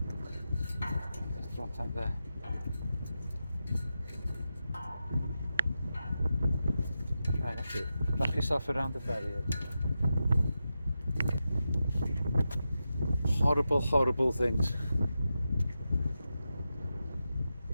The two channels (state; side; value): inverted; both; correlation -0.90